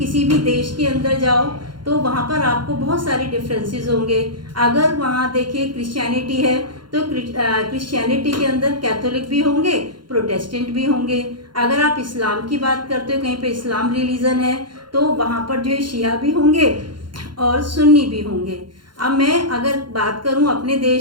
भी देश के अंदर जाओ तो वहाँ पर आपको बहुत सारे डिफरेंसेस होंगे। अगर वहाँ देखिए क्रिश्चियनिटी है तो क्रिश्चियनिटी के अंदर कैथोलिक भी होंगे, प्रोटेस्टेंट भी होंगे। अगर आप इस्लाम की बात करते हो, कहीं पे इस्लाम रिलीजन है तो वहाँ पर जो है शिया भी होंगे और सुन्नी भी होंगे। अब मैं अगर बात करूं अपने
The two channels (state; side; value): late; left; 0.72 ms